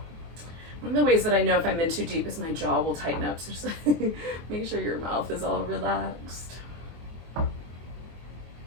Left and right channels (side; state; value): left; late; 24 ms